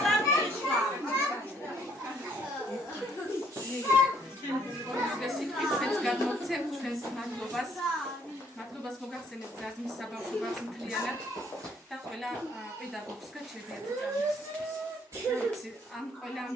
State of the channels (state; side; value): normal; both; correlation 0.65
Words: მადლობას მოგახსენებთ ზარზმის საბავშვო ბაღს მთლიანად და ყველა პედაგოგს გაჩერდიათ წამს. ამ ყველა ამ